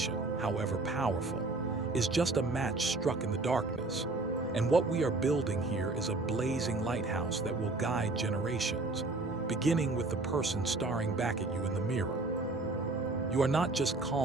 however powerful, is just a match struck in the darkness. And what we are building here is a blazing lighthouse that will guide generations, beginning with the person staring back at you in the mirror. You are not just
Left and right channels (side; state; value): left; quieter; 3.2 dB